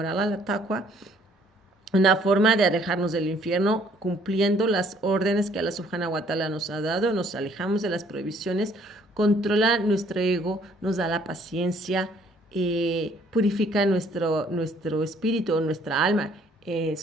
a Allah, la taqwa, una forma de alejarnos del infierno, cumpliendo las órdenes que Allah subhanahu wa ta'ala nos ha dado, nos alejamos de las prohibiciones, controla nuestro ego, nos da la paciencia, purifica nuestro espíritu, nuestra alma,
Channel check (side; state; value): both; normal; correlation 0.62